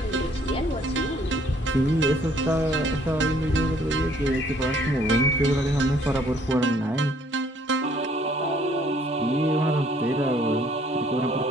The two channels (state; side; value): normal; both; correlation 0.62